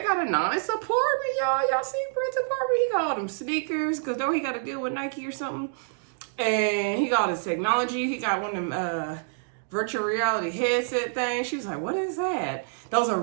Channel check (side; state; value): left; silent; digital silence